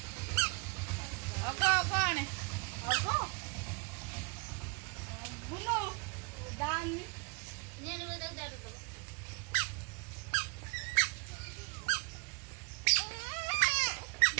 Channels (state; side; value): quieter; left; 30.5 dB